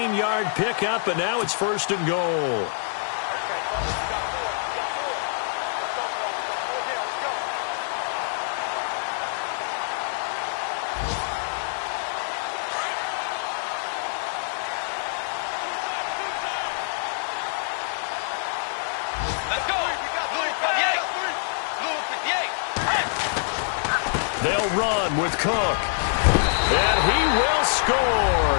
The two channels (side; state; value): right; silent; digital silence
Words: pickup, and now it's 1st and goal. They'll run with Cook. And he will